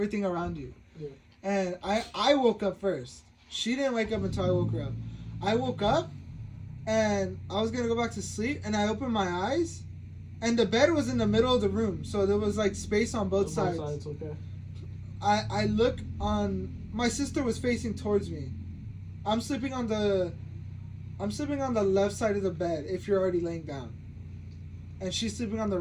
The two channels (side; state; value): both; identical; correlation 1.00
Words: around you. Yeah. And I woke up first. She didn't wake up until I woke her up. I woke up and I was gonna go back to sleep, and I opened my eyes, and the bed was in the middle of the room, so there was like space on both sides. Okay. I look on, my sister was facing towards me. I'm sleeping on the left side of the bed if you're already laying down. And she's sleeping on the